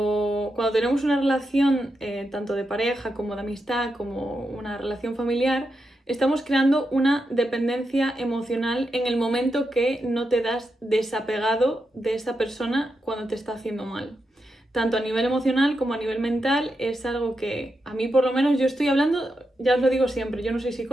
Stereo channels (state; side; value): normal; both; correlation 0.86